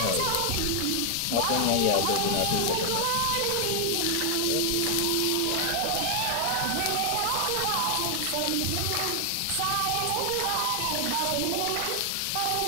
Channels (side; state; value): both; different; correlation 0.00